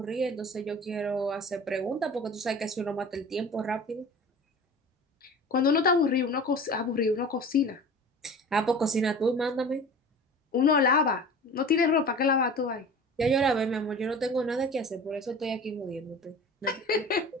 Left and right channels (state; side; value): normal; both; correlation 0.39